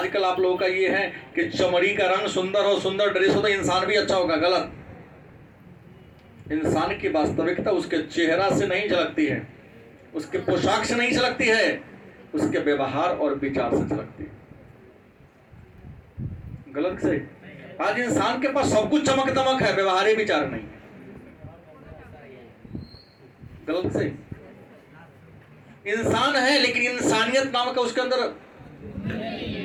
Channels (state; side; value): identical; both; correlation 1.00